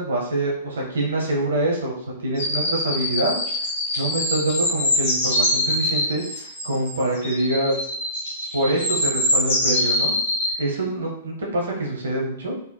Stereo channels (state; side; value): inverted; both; correlation -0.42